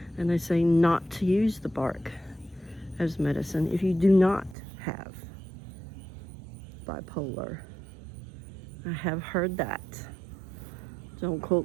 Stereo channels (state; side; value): drops out; left; at 4.5 s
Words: And they say not to use the bark as medicine if you do not have bipolar. I have heard that. Don't quote